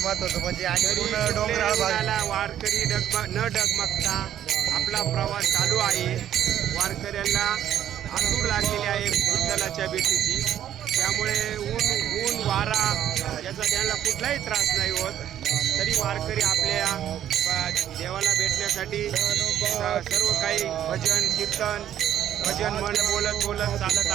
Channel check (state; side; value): quieter; left; 10.9 dB